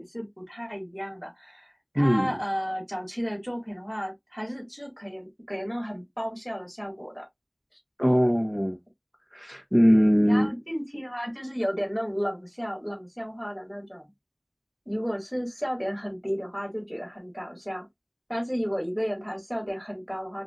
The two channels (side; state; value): both; identical; correlation 1.00